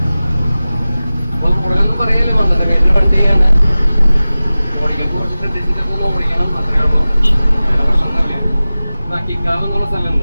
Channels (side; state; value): both; inverted; correlation -0.97